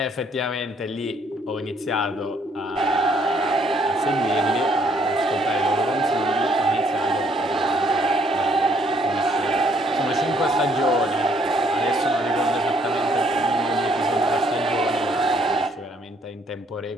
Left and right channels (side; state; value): both; normal; correlation 0.66